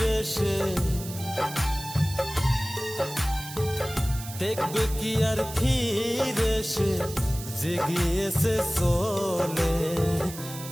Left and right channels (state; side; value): noise; right; hiss, 12 dB below the sound